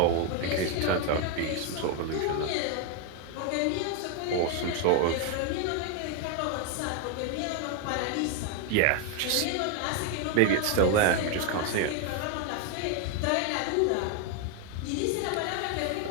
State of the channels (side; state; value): both; different; correlation 0.01